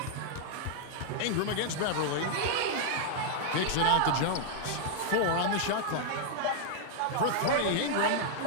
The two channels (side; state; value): both; different; correlation -0.01